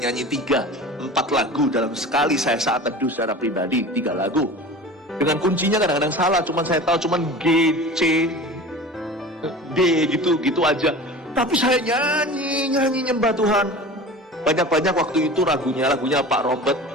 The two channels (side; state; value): both; normal; correlation 0.36